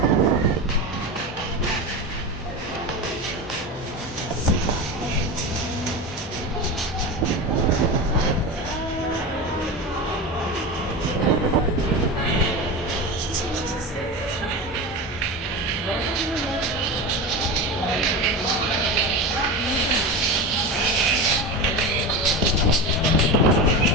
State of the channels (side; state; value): both; normal; correlation 0.24